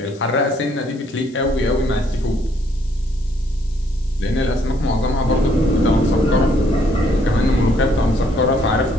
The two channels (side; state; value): left; noise; hiss, 27 dB below the sound